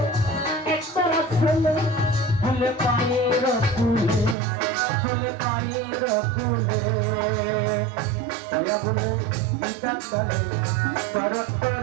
ফুলে ফুলে পায়ের ফুলে ফুলে পায়ের ফুলে দয়া বলে বিধান করে করত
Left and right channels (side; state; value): left; drops out; at 4.4 s